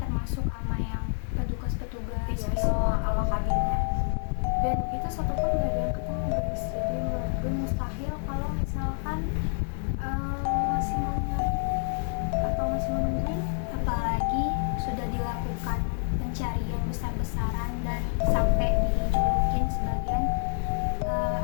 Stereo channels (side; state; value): right; silent; 55 dB below the other